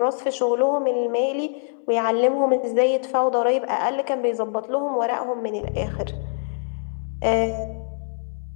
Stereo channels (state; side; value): silent; right; digital silence